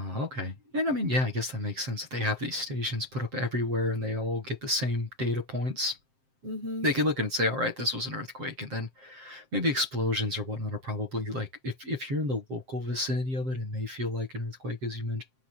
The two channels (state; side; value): late; left; 7.6 ms